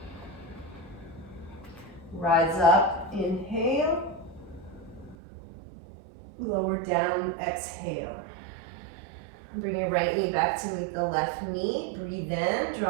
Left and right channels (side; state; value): left; drops out; at 5.2 s